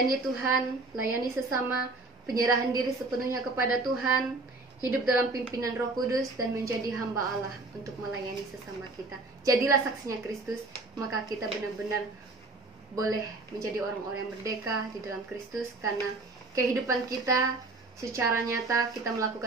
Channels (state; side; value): quieter; left; 3.3 dB